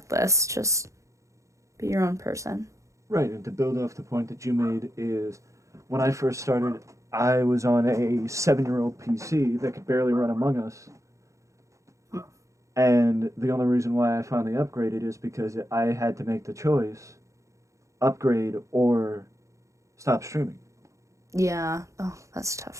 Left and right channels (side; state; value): left; late; 0.15 ms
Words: Just be your own person. Right. And to build off the point that you made is when I first started, I was on a 7-year-old PC that could barely run Among Us. And the only reason why I finally upgraded is because I had to make the choice upgrade or stop streaming. Yeah. Oh, that's